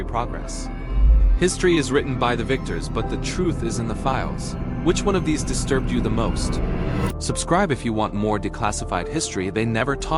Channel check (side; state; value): both; identical; correlation 1.00